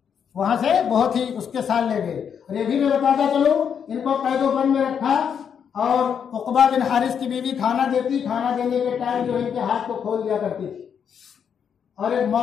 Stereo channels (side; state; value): right; quieter; 7.6 dB